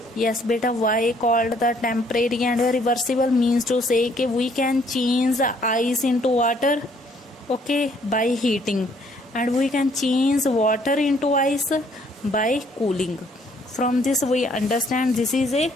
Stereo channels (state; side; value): normal; both; correlation 0.64